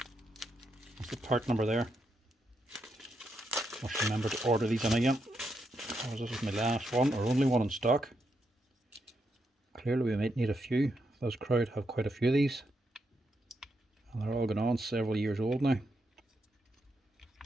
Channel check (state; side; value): normal; both; correlation 0.82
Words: That's the part number there. Must remember to order these in again, because this is my last one, or only one in stock. Clearly we might need a few. Those crowd have quite a few of these, and they're all going on several years old now.